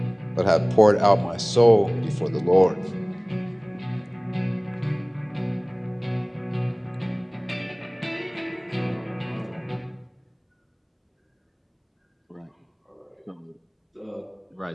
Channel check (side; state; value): both; identical; correlation 1.00